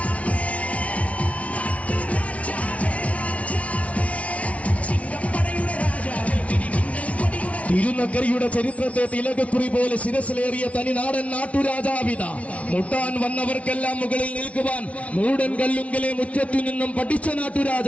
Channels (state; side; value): late; right; 0.065 ms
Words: തിരുനക്കരയുടെ ചരിത്രത്തെ തിലകക്കുറി പോലെ ശിരസിലേറിയ തനിനാടൻ നാട്ടുരാജാവിത. മുട്ടാൻ വന്നവർക്കെല്ലാം മുകളിൽ നിൽക്കുവാൻ മൂടൻ കല്ലുങ്കലെ മുറ്റത്തു നിന്നും പഠിച്ച